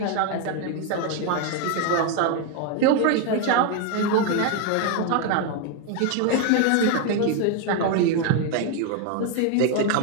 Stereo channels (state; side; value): different; both; correlation 0.01